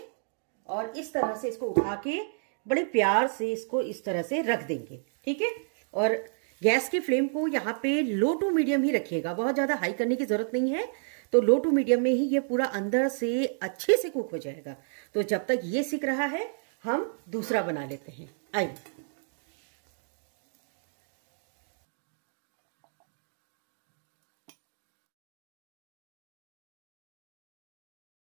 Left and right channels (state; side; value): silent; left; digital silence